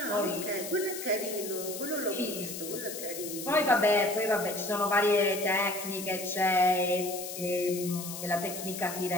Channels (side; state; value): left; noise; hiss, 8 dB below the sound